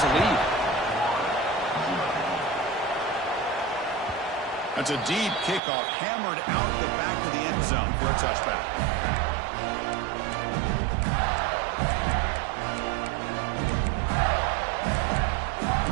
a lead. That's a deep kickoff, hammered out the back of the end zone for a touchback.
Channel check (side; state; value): left; drops out; at 5.6 s